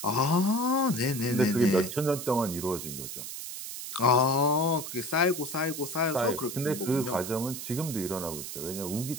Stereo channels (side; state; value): right; noise; hiss, 8 dB below the sound